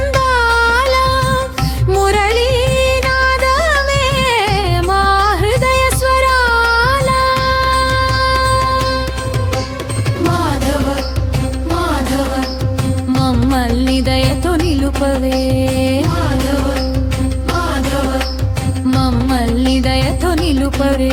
మురళీనాదమే మా హృదయ స్వరాల మాధవ మాధవ మమ్మల్ని దయతో నిలుపవే మాధవ మాధవ మమ్మల్ని దయతో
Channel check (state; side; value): identical; both; correlation 1.00